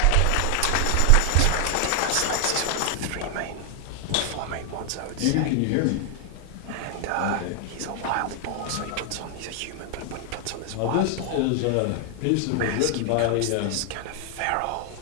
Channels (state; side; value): different; both; correlation 0.00